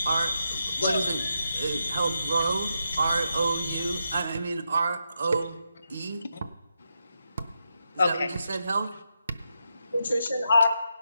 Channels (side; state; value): both; inverted; correlation -0.84